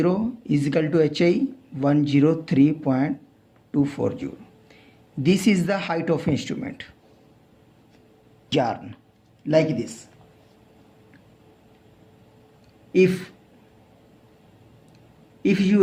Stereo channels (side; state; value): both; identical; correlation 1.00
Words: is equal to HI 103.240. This is the height of instrument. Yarn like this. If you